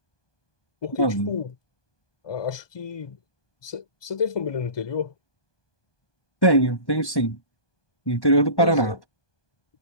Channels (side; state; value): right; late; 1.1 ms